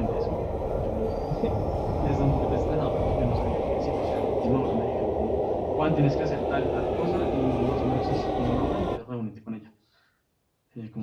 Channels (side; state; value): both; identical; correlation 1.00